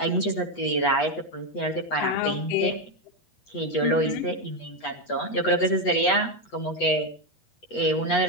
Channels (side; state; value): right; late; 8.2 ms